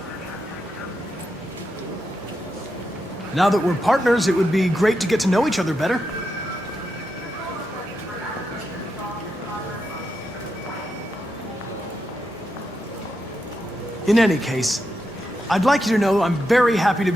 Now that we're partners, it would be great to get to know each other better. In any case, I'd like you to know I'm very happy to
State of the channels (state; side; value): normal; both; correlation 0.85